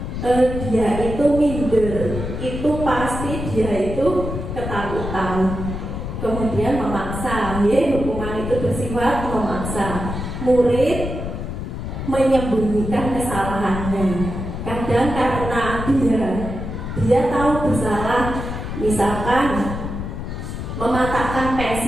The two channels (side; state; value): left; noise; rumble, 6 dB below the sound